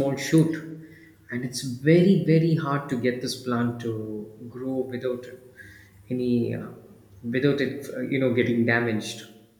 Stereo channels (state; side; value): identical; both; correlation 1.00